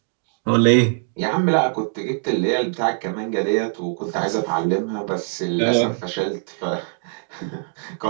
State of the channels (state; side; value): silent; left; 63 dB below the other